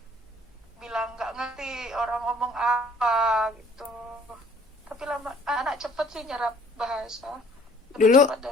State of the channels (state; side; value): normal; both; correlation 0.57